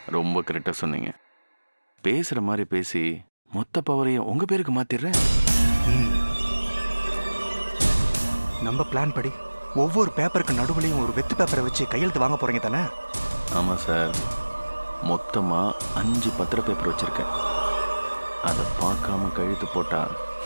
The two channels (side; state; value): both; inverted; correlation -1.00